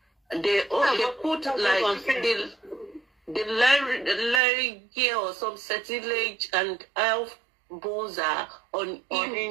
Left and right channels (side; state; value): left; drops out; at 4.4 s